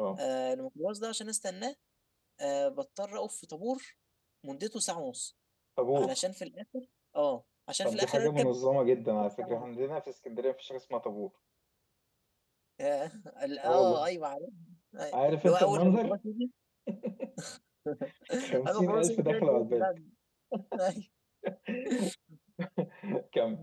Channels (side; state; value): both; identical; correlation 1.00